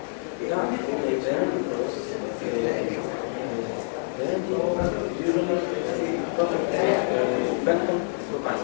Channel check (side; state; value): right; silent; digital silence